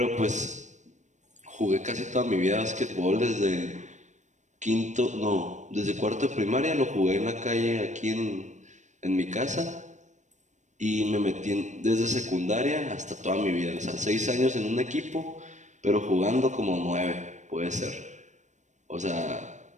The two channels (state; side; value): late; left; 0.35 ms